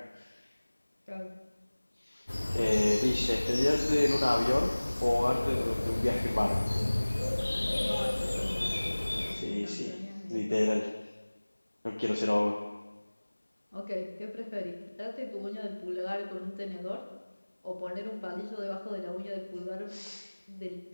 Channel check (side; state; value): both; inverted; correlation -1.00